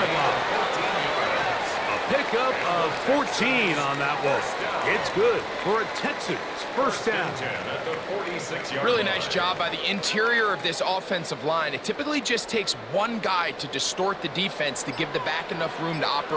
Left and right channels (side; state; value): both; identical; correlation 1.00